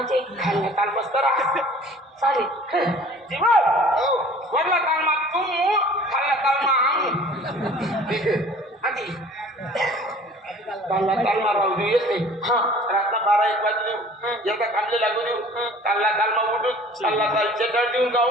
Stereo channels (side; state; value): both; normal; correlation 0.48